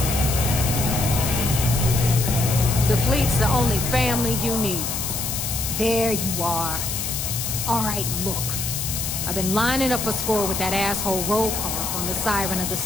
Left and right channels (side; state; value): left; noise; hiss, 3 dB below the sound